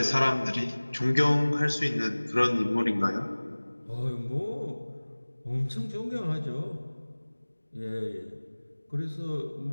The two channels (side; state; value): both; inverted; correlation -1.00